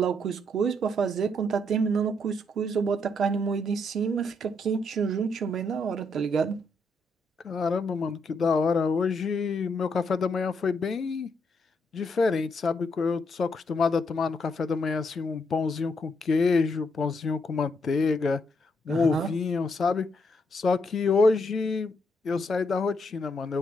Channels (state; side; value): normal; both; correlation 0.76